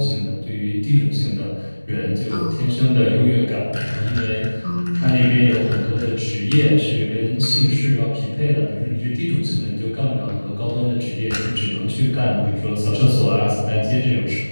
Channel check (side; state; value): both; inverted; correlation -1.00